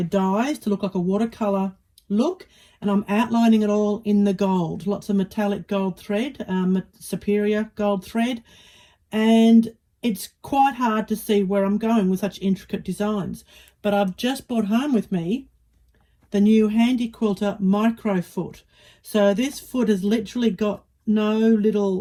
dyes to look like a watercolour look, and I'm outlining it all in the gold, lots of metallic gold thread, superior gold thread, and it's quite hard to see where I'm going with such intricate designs. But I've just brought home with me the new Handi Quilter MicroFoot. So this foot has literally got no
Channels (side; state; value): both; identical; correlation 1.00